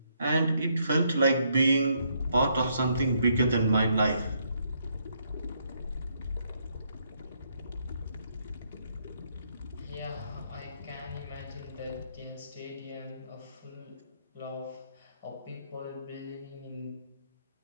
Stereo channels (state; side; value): inverted; both; correlation -0.74